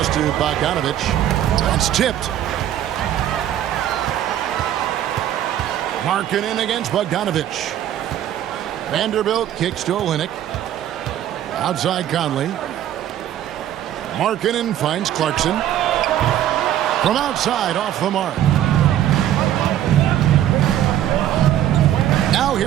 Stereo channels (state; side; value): quieter; left; 11.6 dB